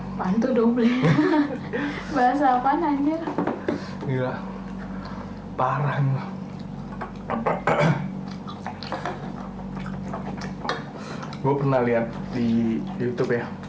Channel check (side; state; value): both; identical; correlation 1.00